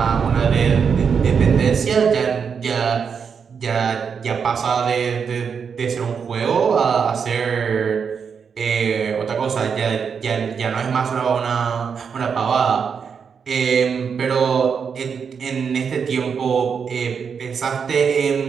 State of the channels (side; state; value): left; quieter; 6.4 dB